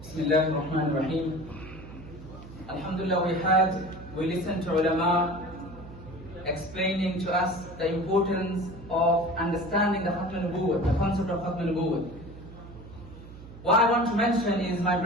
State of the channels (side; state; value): right; noise; hum, 16 dB below the sound